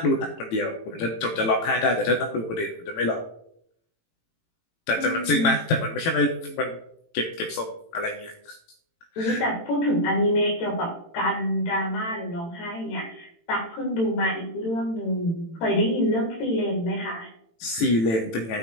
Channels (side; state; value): right; late; 18 ms